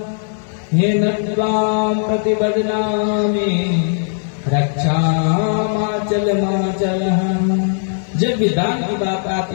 हे नत्वाम प्रतिबदनामि रक्षामाचल माचल। जब भी दान की बात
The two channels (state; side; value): silent; right; digital silence